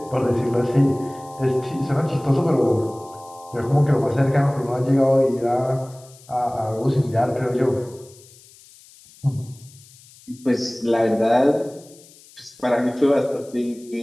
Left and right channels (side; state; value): left; noise; hiss, 24 dB below the sound